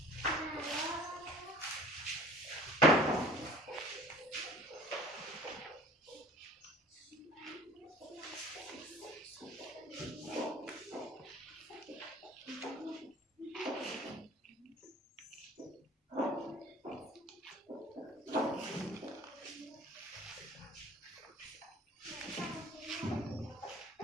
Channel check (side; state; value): both; normal; correlation 0.48